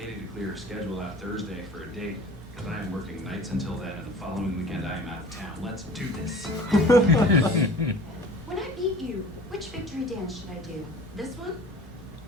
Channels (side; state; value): both; normal; correlation 0.43